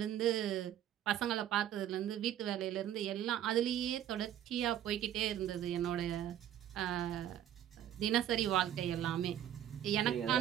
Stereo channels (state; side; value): quieter; left; 11.0 dB